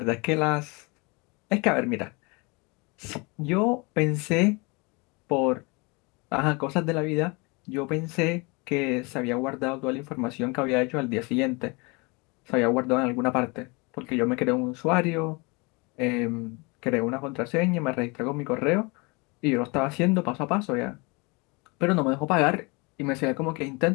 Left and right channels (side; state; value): right; quieter; 28.4 dB